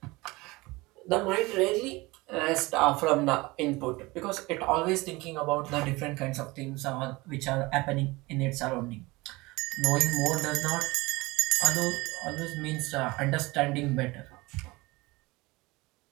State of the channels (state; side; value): quieter; left; 22.3 dB